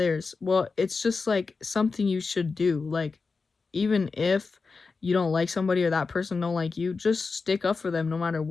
Well, it's just like something you should do. Like, even if you don't like somebody or that person don't like you, just stick up for them no matter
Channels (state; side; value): quieter; right; 4.5 dB